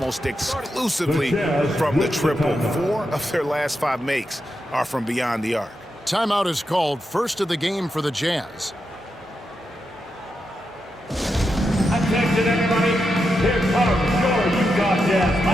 exclusively from the triple. 4 of their last 5 makes are from beyond the arc. Timeout is called, first of the game for the Jazz. Attention, everybody. Here comes your Utah Jazz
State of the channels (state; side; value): normal; both; correlation 0.86